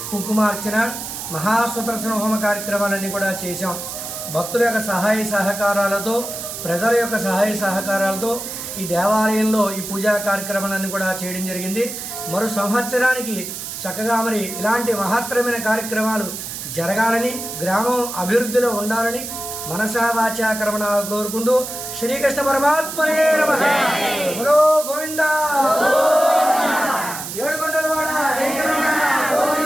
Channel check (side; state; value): right; noise; hiss, 8 dB below the sound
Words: కుంకుమార్చన, మహాసుదర్శన హోమ కార్యక్రమాలన్నీ కూడా చేశాం. భక్తుల యొక్క సహాయ సహకారాలతో, ప్రజల యొక్క సహాయ సహకారాలతో ఈ దేవాలయంలో ఈ పూజా కార్యక్రమాలన్నీ కూడా చేయడం జరిగింది. మరో సంవత్సరానికి చక్కగా మరి ఇలాంటి మహత్తరమైన కార్యక్రమాలు జరగాలని, గ్రామం అభివృద్ధిలో ఉండాలని మనసా వాచా కర్మణ కోరుకుంటూ శ్రీకృష్ణ పరమాత్మనే నమః. బలో గోవిందా, ఏడుకొండలవాడ వెంకటరమణ